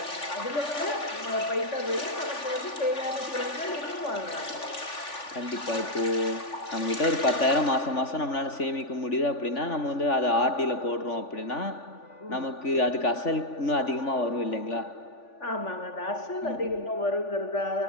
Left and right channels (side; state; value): right; late; 3.5 ms